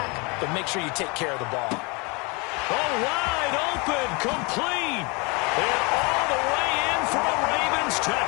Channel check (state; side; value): quieter; right; 29.3 dB